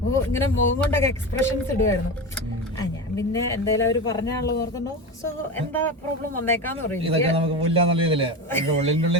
ഇങ്ങനെ മുഖം കൊണ്ടൊക്കെ എക്സ്പ്രഷൻസ് ഇടുമായിരുന്നു. ഞാൻ പിന്നെ എന്തായാലും അവർ പറഞ്ഞാണല്ലോ ഓർക്കണ്ടോ, സോ എന്താ പ്രോബ്ലം വന്നേക്കാന്ന് പറയും.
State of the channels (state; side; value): normal; both; correlation 0.23